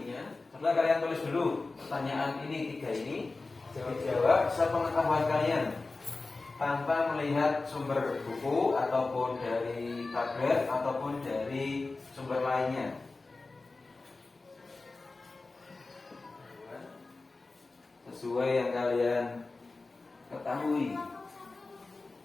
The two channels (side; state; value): right; quieter; 3.6 dB